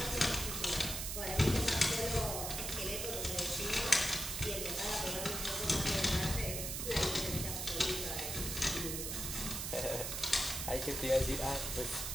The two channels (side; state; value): right; noise; hiss, 3 dB below the sound